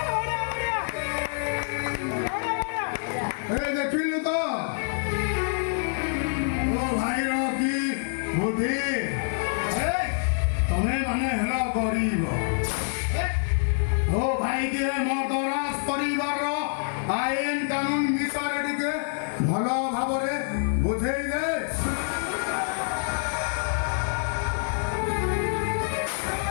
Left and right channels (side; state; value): right; silent; 61 dB below the other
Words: ଦେଖିଲୁ ତ ମୋ ଭାଇର କି ବୁଦ୍ଧି। ତମେ ମାନେ ହେଲ ଗରିବ। ମୋ ଭାଇକି ମଦରାଜ ପରିବାରର ଆଇନ କାନୁନ ବିଷୟରେ ଟିକେ ଭଲ ଭାବରେ ବୁଝେଇ ଦେ।